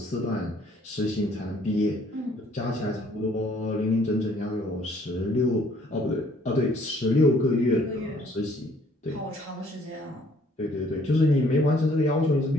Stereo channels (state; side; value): normal; both; correlation 0.61